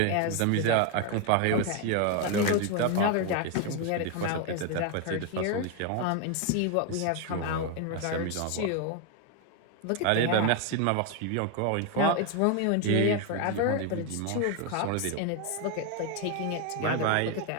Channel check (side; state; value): both; different; correlation 0.01